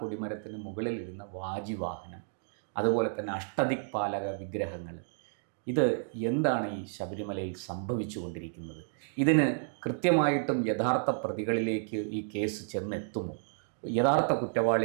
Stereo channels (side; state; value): left; silent; digital silence